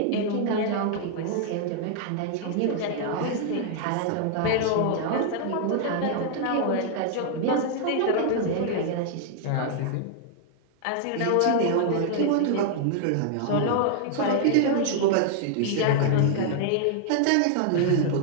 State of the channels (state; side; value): different; both; correlation 0.00